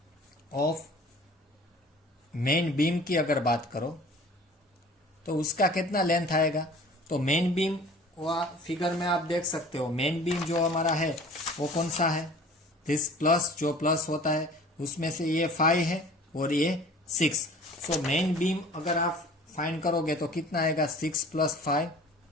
ऑफ मेन बीम की अगर बात करो तो उसका कितना लेंथ आएगा। तो मेन बीम फिगर में आप देख सकते हो, मेन बीम जो हमारा है वो कौन सा है, दिस प्लस, जो प्लस होता है उसमें से ये 5 है और ये 6। सो मेन बीम अगर आप फाइंड करोगे तो कितना आएगा, 6 + 5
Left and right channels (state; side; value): normal; both; correlation 0.46